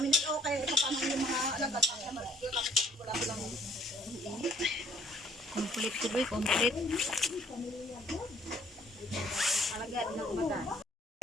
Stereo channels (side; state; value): both; normal; correlation 0.60